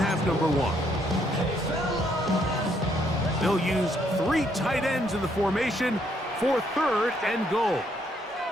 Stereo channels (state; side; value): normal; both; correlation 0.71